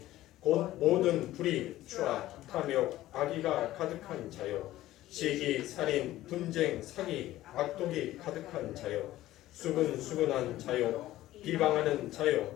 곧 모든 불의, 추악, 탐욕, 악의가 가득한 자요 시기, 살인, 분쟁, 사기, 악독이 가득한 자요 수근수근한 자요 비방하는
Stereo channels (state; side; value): quieter; right; 15.2 dB